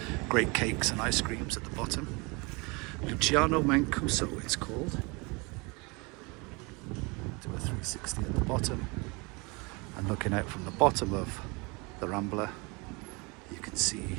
Great cakes and ice creams at the bottom. Luciano Mancuso it's called. Do a 360 at the bottom, and looking out from the bottom of the Rambla you can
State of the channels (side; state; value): left; quieter; 28.1 dB